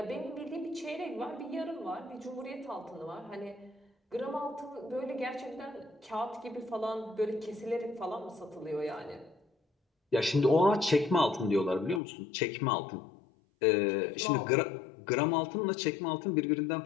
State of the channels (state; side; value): drops out; right; at 12.0 s